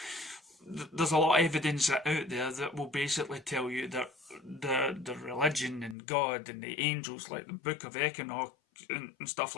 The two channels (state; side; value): drops out; right; at 6.0 s